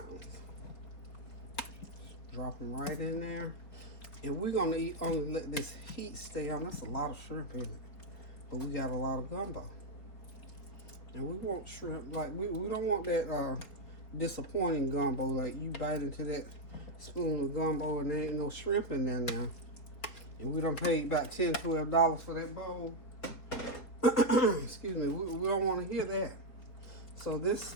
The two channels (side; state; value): right; late; 4.5 ms